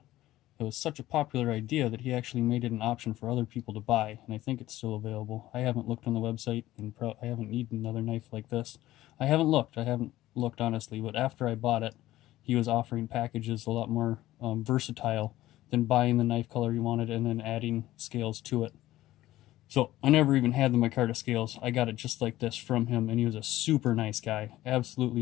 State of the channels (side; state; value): right; quieter; 15.5 dB